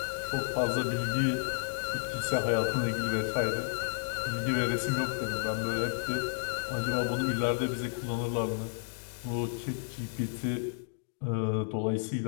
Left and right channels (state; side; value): silent; right; digital silence